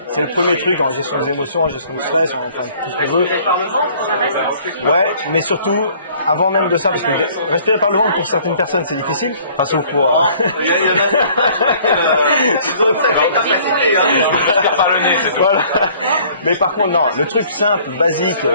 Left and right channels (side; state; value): both; inverted; correlation -0.56